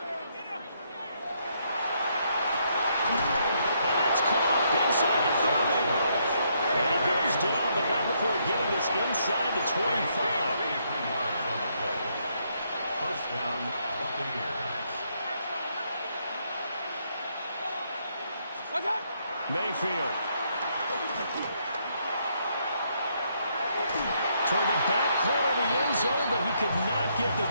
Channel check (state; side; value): inverted; both; correlation -0.74